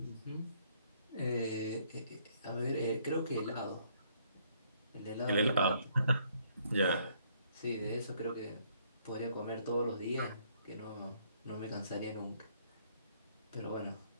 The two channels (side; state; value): both; inverted; correlation -0.66